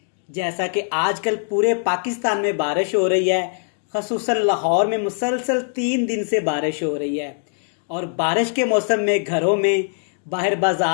जैसा कि आजकल पूरे पाकिस्तान में बारिश हो रही है, खसूसन लाहौर में मुसलसल 3 दिन से बारिश हो रही है और बारिश के मौसम में घरों में, बाहर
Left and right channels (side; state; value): right; silent; 65 dB below the other